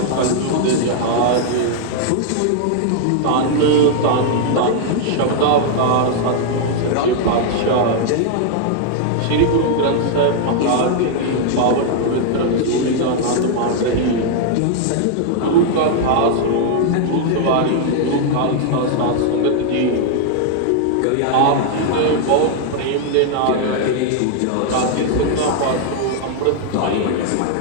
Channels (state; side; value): different; both; correlation 0.00